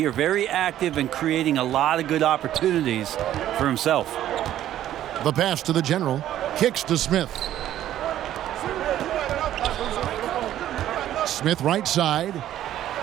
Very active and creating a lot of good opportunities for himself. The pass to the general. Kicks to Smith. Smith right side.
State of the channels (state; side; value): quieter; left; 12.3 dB